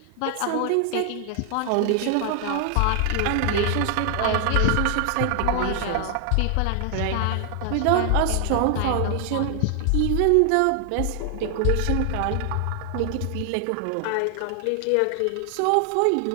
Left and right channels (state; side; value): different; both; correlation 0.00